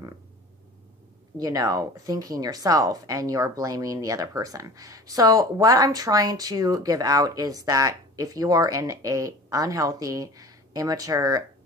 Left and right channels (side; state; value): both; normal; correlation 0.40